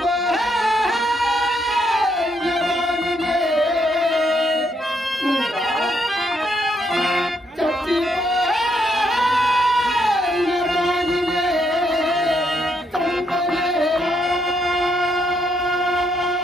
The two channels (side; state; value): both; normal; correlation 0.75